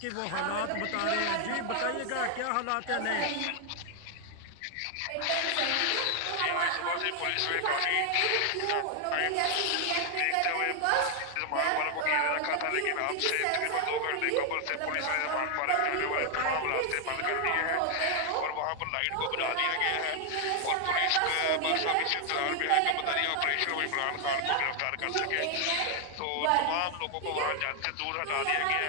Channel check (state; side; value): different; both; correlation 0.00